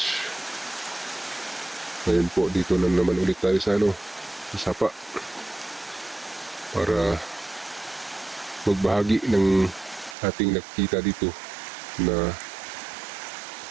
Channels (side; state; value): left; drops out; at 10.2 s